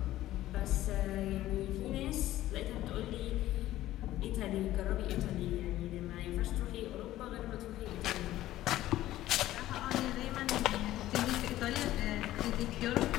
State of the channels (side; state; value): right; quieter; 14.7 dB